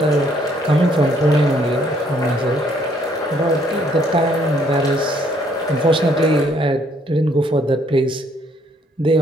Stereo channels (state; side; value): normal; both; correlation 0.66